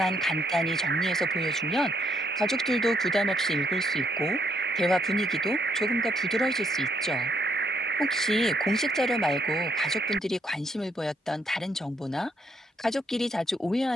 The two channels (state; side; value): normal; both; correlation 0.73